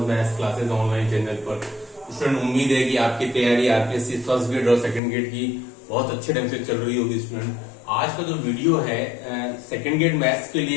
maths classes online channel पर। स्टूडेंट, उम्मीद है कि आपकी तैयारी आरपीएससी फर्स्ट ग्रेड और सेकंड ग्रेड की बहुत अच्छे ढंग से चल रही होगी। स्टूडेंट, आज का जो वीडियो है सेकंड ग्रेड मैथ्स के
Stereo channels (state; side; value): drops out; right; at 5.0 s